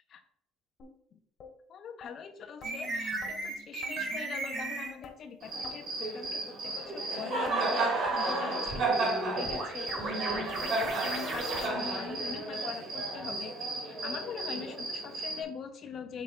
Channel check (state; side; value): normal; both; correlation 0.57